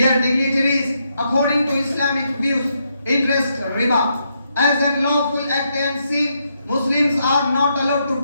dignitaries, according to Islamic views, interest riba as a lawful act and sin, Muslims are not allowed to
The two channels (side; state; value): both; inverted; correlation -0.79